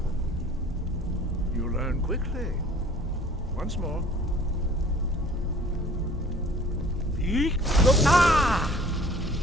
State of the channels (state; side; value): normal; both; correlation 0.50